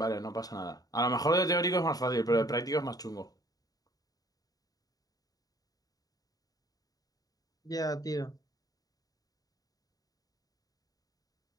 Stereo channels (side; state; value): right; late; 0.18 ms